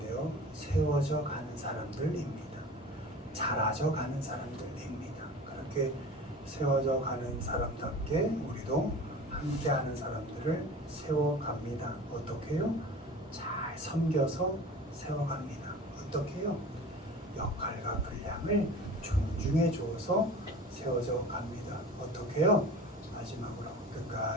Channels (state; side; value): normal; both; correlation 0.38